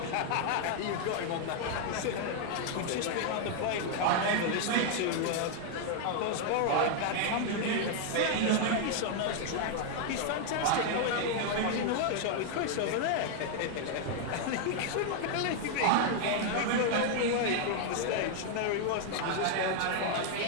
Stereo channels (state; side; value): different; both; correlation 0.00